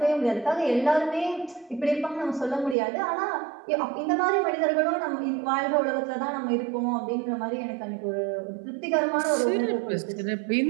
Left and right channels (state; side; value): drops out; left; at 2.8 s